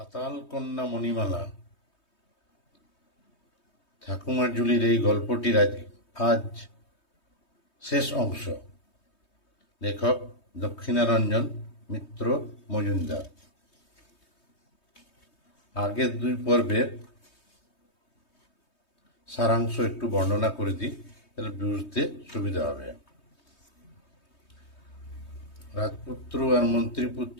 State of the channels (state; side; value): late; right; 3.2 ms